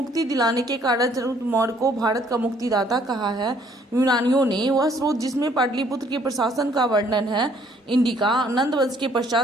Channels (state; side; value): normal; both; correlation 0.63